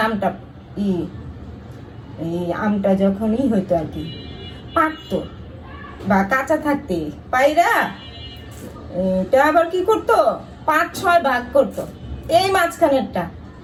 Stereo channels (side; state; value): both; identical; correlation 1.00